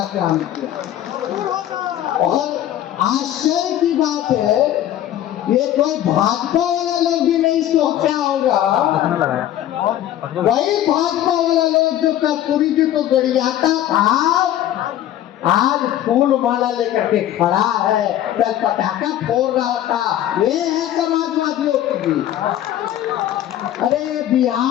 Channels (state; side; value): quieter; right; 12.2 dB